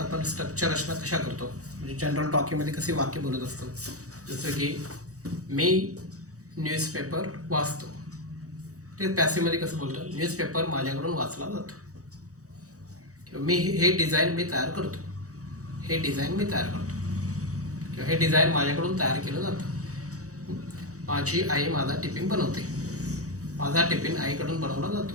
स्ट्रक्चर रचना कशा करतो, म्हणजे जनरल टॉकिंगमध्ये कशी वाक्य बोलत असतो. जसं की मी न्यूजपेपर वाचतो, ते पॅसिव्हमध्ये कसं बोलतो, न्यूजपेपर माझ्याकडून वाचला जातो. किंवा मी हे डिझाईन मी तयार करतो, हे डिझाईन मी तयार करतो, किंवा हे डिझाईन माझ्याकडून तयार केलं जातं. माझी आई माझा टिफिन बनवते, माझा टिफिन आईकडून बनवला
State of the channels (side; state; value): left; late; 0.66 ms